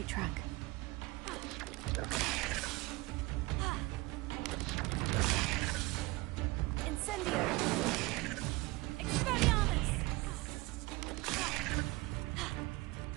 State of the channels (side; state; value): left; quieter; 22.4 dB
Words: track. Incendio! Expelliarmus!